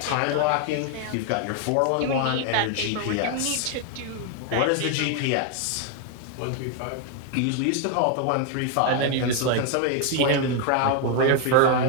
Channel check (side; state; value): both; different; correlation 0.00